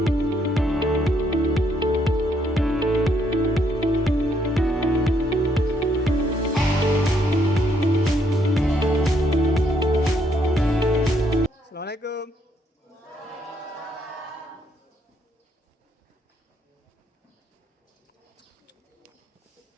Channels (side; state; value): both; normal; correlation 0.72